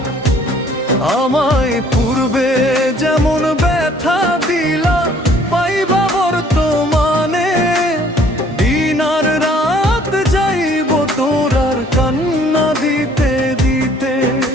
আমায় পূর্বে যেমন ব্যথা দিলা পাইবা বর্তমানে, দিন আর রাত যাইব তোর আর কান্না দিতে দিতে।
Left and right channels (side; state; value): both; normal; correlation 0.58